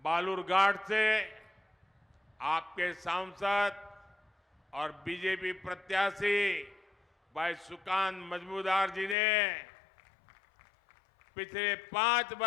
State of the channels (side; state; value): right; drops out; at 9.2 s